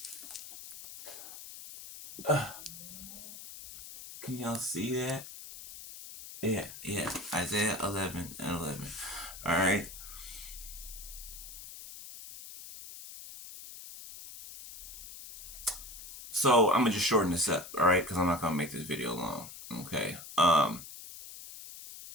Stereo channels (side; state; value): left; noise; hiss, 13 dB below the sound